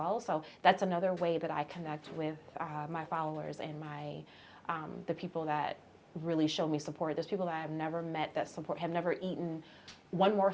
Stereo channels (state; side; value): identical; both; correlation 1.00